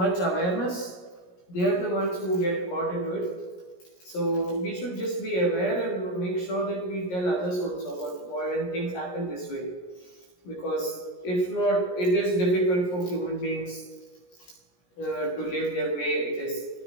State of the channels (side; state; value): right; late; 17 ms